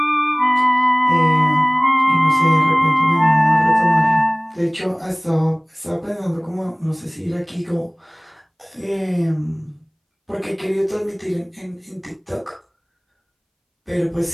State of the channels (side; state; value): both; identical; correlation 1.00